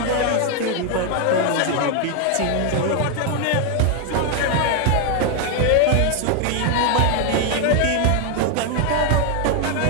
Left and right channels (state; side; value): different; both; correlation 0.01